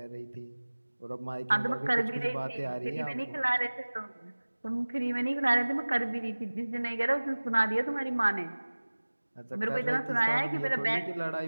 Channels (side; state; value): both; inverted; correlation -1.00